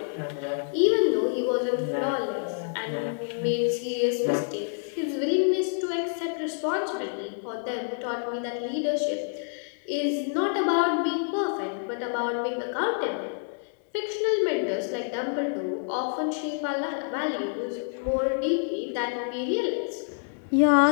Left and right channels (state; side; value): silent; right; 60 dB below the other